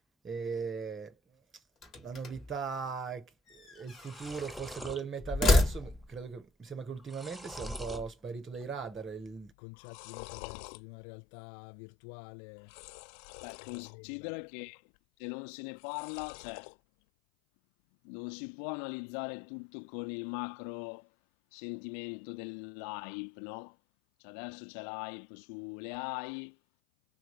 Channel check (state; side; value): drops out; right; at 9.5 s